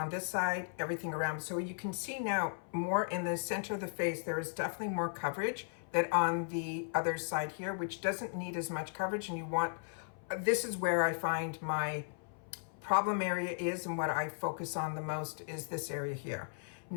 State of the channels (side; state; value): right; silent; 54 dB below the other